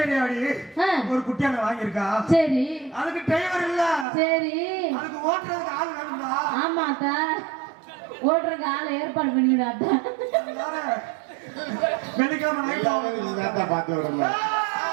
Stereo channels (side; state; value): left; drops out; at 4.0 s